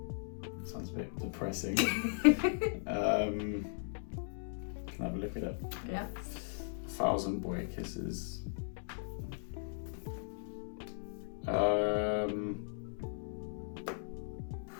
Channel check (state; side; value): silent; right; digital silence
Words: Sounds a bit depressing. Can I have a look at it? Yeah. 1,000 Boy Kisses.